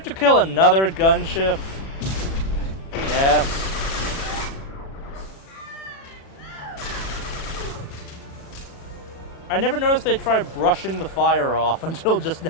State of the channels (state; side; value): late; right; 36 ms